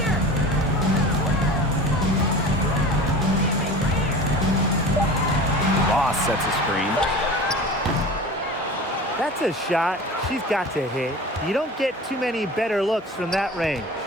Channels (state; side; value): normal; both; correlation 0.36